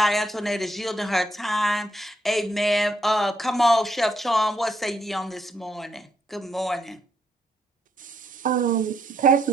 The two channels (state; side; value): normal; both; correlation 0.75